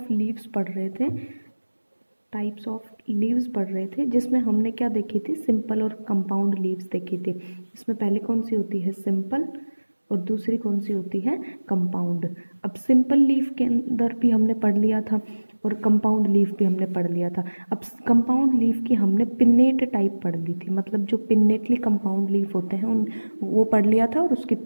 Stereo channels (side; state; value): both; inverted; correlation -1.00